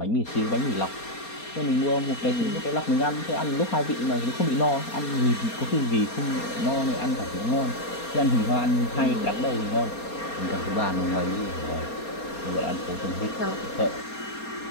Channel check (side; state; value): right; late; 4.3 ms